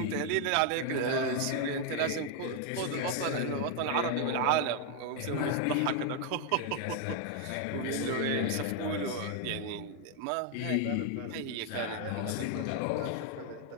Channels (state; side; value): different; both; correlation 0.00